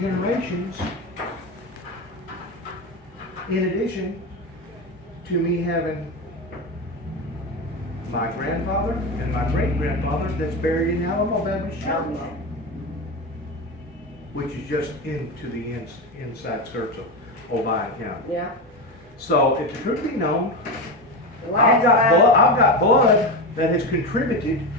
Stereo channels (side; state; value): both; normal; correlation 0.18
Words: In addition to me having my grandfather and my great-grandfather that's buried in Alamo Baptist Chapel, which is just into the inside skirts of Obion County. Yeah. So if the truth be known, The I've last got blood that has contributed